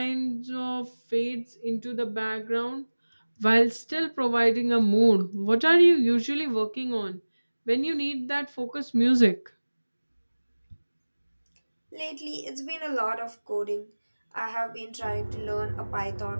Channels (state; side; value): inverted; both; correlation -1.00